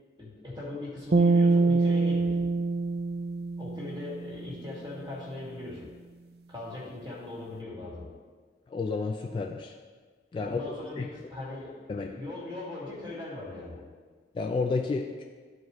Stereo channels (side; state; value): both; normal; correlation 0.72